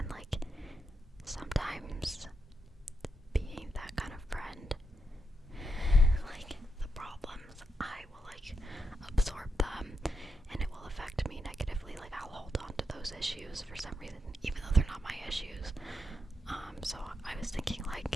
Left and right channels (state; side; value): normal; both; correlation 0.84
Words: like, sometimes being that kind of friend, like the problems, I will like absorb them and it will affect me negatively. Like, I'll hold on to those issues for some reason, even though they're not my issues. So I was thinking